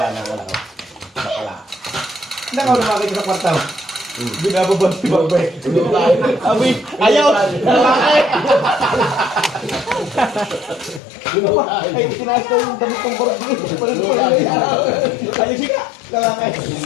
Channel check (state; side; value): drops out; right; at 11.0 s